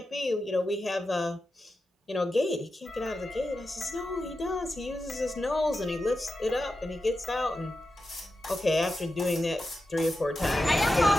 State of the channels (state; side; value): normal; both; correlation 0.91